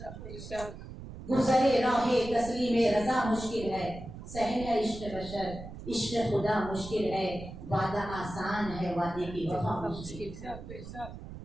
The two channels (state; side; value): noise; right; rumble, 12 dB below the sound